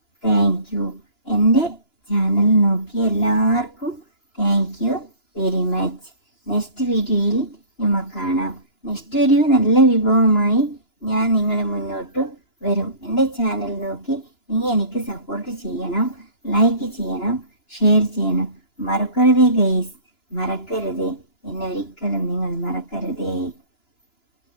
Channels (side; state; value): right; late; 2.9 ms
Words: താങ്ക് യു. എൻ്റെ ചാനൽ നോക്കിയ എല്ലാവർക്കും thank you very much. Next വീഡിയോയിൽ നമുക്ക് കാണാം. നെക്സ്റ്റ് ഒരു നല്ല വിഭവമായി ഞാൻ നിങ്ങളെ മുന്നോട്ട് വരും. എൻ്റെ ചാനൽ നോക്കി നീ എനിക്ക് സപ്പോർട്ട് ചെയ്യണം, ലൈക്ക് ചെയ്യണം, ഷെയർ ചെയ്യണം. മറക്കരുതേ ഗൈസ്, മറക്കരുതേ. എന്നെ ഒരിക്കലും നിങ്ങൾ മറക്കരുതേ.